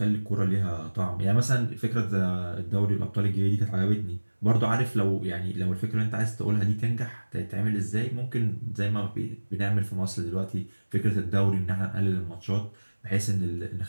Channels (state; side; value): inverted; both; correlation -1.00